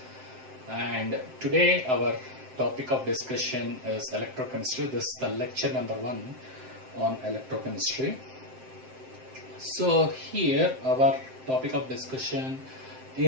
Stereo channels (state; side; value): late; left; 7.7 ms